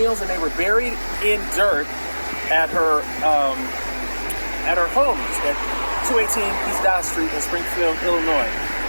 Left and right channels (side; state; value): both; inverted; correlation -1.00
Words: and they were buried in dirt at her home at 218 East Dodge Street in Springfield, Illinois.